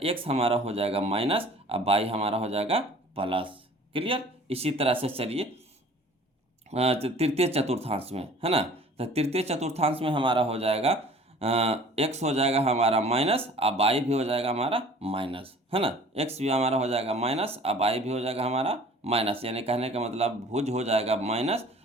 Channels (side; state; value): both; normal; correlation 0.48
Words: एक्स हमारा हो जाएगा माइनस और बाई हमारा हो जाएगा प्लस। क्लियर। इसी तरह से चलिए तृतीय चतुर्थांश में, है ना। तो तृतीय चतुर्थांश में हमारा हो जाएगा एक्स हो जाएगा हमारा माइनस और बाई भी हो जाएगा हमारा माइनस, है ना। एक्स भी हमारा हो जाएगा माइनस और बाई भी हो जाएगा हमारा माइनस, यानी कहने का मतलब भुज हो जाएगा माइनस